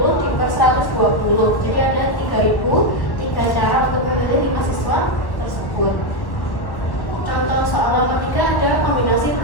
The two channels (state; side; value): late; right; 1.2 ms